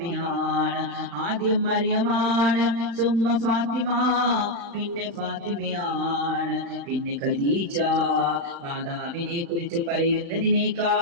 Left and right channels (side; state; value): left; late; 35 ms